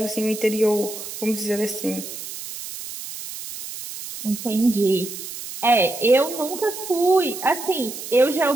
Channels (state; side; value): noise; right; hiss, 10 dB below the sound